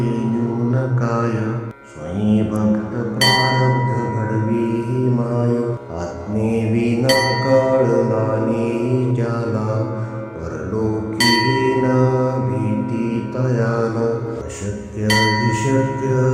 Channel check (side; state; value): both; identical; correlation 1.00